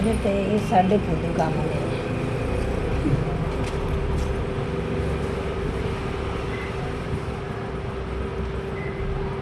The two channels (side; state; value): both; identical; correlation 1.00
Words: ਤੇ ਇਹ ਸਾਡੇ ਫੁੱਟ ਕੰਮ ਨੇ